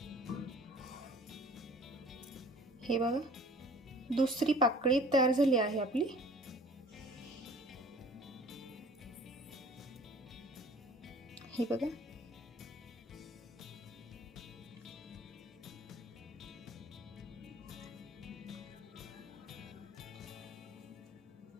हे बघा दुसरी पाकळी तयार झाली आहे आपली। हे बघा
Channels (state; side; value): normal; both; correlation 0.49